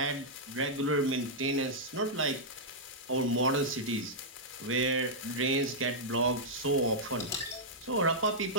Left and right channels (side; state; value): both; normal; correlation -0.09